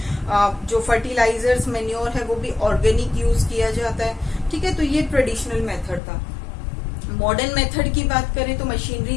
जो फर्टिलाइजर्स, मेन्योर है वो भी ऑर्गेनिक यूज किया जाता है, ठीक है। तो ये ट्रेडिशनल मेथड था। मॉडर्न मेथड की बात करें तो मशीनरी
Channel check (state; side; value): drops out; right; at 6.0 s